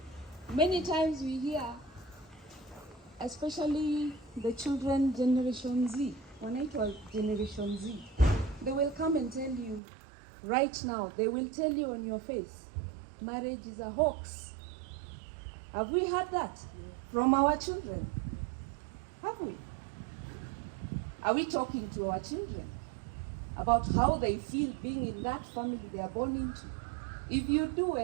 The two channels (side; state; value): left; drops out; at 9.8 s